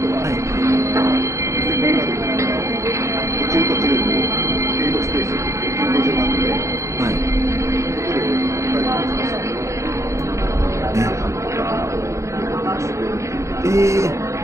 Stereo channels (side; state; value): left; late; 0.14 ms